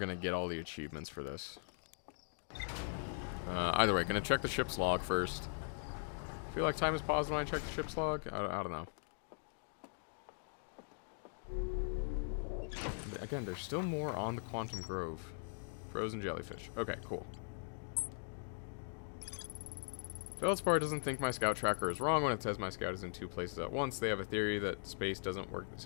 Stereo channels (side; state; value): right; silent; digital silence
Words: get all the achievements for this. Either way, gonna check the ship's log first. I feel like time has paused when I check the ship's log. I don't know. Again, there's still more on the Quantum Grove. Frozen jellyfish. Okay, cool. Feldspar doesn't think my scout tracker is wrong when it says my scout is in 2 places at once. They have a theory that space doesn't work the